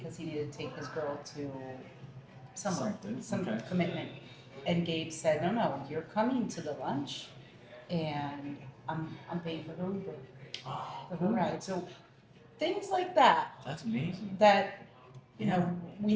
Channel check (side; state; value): both; identical; correlation 1.00